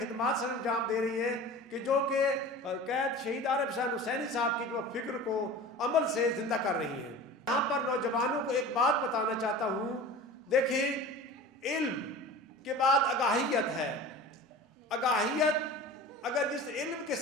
سر انجام دے رہی ہیں، کہ جو کہ قید شہید عارف حسین حسینی صاحب کی جو فکر کو عمل سے زندہ کر رہی ہیں۔ یہاں پر نوجوانوں کو ایک بات بتانا چاہتا ہوں، دیکھیں علم کے بعد آگاہیت ہے۔ آگاہیت اگر جس علم کے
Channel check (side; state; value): both; normal; correlation 0.37